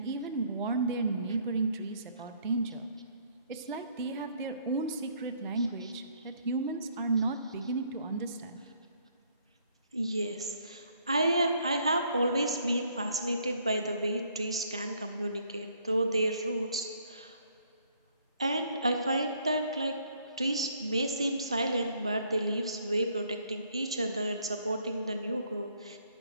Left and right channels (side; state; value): both; inverted; correlation -0.66